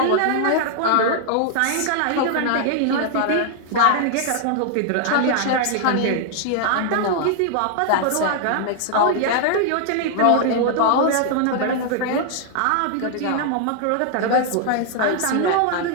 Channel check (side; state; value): both; different; correlation 0.00